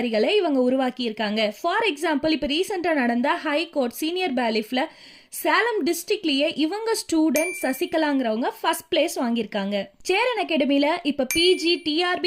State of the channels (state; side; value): identical; both; correlation 1.00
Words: இவங்க உருவாக்கி இருக்காங்க. ஃபார் எக்ஸாம்பிள், இப்போ ரீசெண்டா நடந்த ஹை கோர்ட் சீனியர் பேலிஃப்ல சேலம் டிஸ்ட்ரிக்ட்லயே இவங்க ஸ்டூடெண்ட் சசிகலாங்கிறவங்க ஃபர்ஸ்ட் பிளேஸ் வாங்கியிருக்காங்க. சேரன் அகாடமியில இப்ப பிஜி